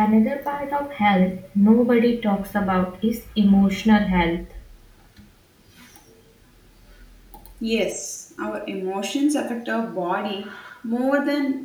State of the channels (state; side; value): identical; both; correlation 1.00